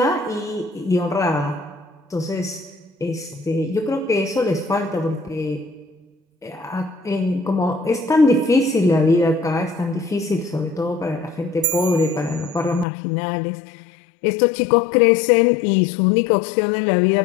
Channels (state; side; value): drops out; right; at 12.9 s